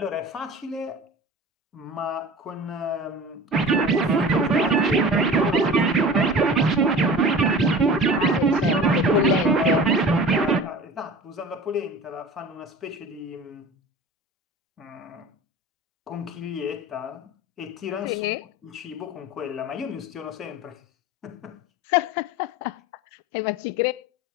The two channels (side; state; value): both; normal; correlation 0.38